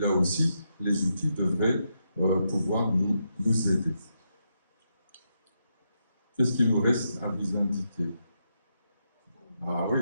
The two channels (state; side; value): inverted; both; correlation -0.82